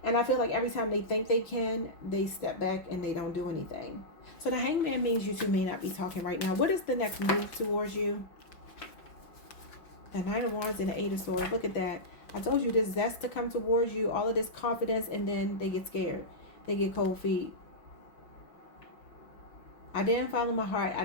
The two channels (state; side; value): late; right; 5.7 ms